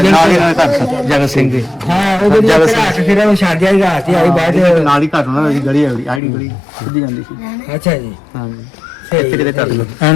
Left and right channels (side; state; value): right; drops out; at 6.2 s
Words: ਹੀ ਘਰ ਜਗਤ ਸਿੰਘ ਦੇ ਹਾਂ ਉਹ ਜਿਹੜੀ ਰਾਤ ਫਿਰ ਉਹ ਛੱਡਿਆ ਹੀ ਰਾਤ ਹੀ ਆਈ ਬਾਅਦ ਨਾਲ ਹੀ ਘਰ ਉਹਨਾਂ ਦੀ ਗਲੀ ਆਈਡੀ ਗਲੀ ਸਿੱਧੀ ਜਾਂਦੀ ਸੀ ਅੱਛਾ ਜੀ ਹਾਂਜੀ ਇੱਥੇ ਕਿਤੇ ਕਰ ਲਓ